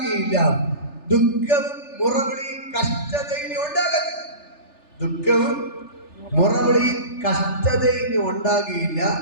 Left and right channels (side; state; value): right; late; 3.4 ms